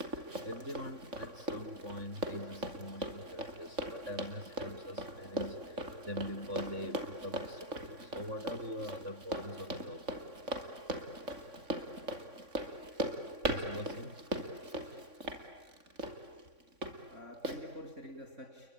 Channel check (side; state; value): left; late; 3.6 ms